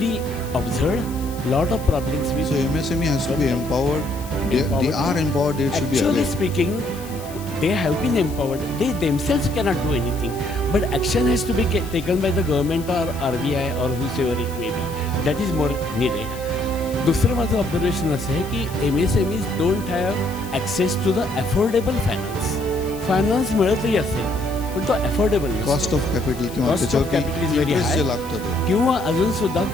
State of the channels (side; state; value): left; noise; hiss, 17 dB below the sound